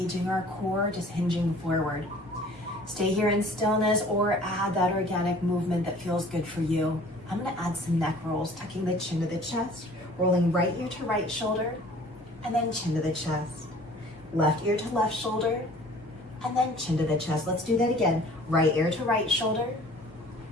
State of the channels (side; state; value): both; normal; correlation 0.50